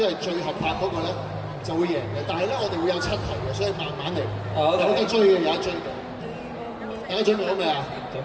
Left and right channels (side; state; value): both; identical; correlation 1.00